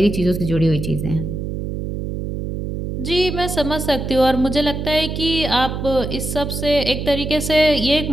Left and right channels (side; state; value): right; noise; hum, 4 dB below the sound